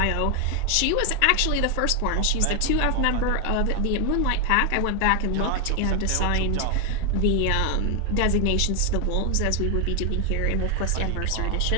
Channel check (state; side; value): different; both; correlation 0.01